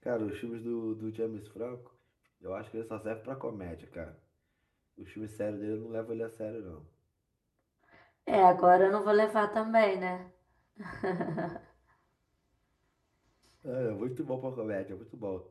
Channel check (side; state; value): both; identical; correlation 1.00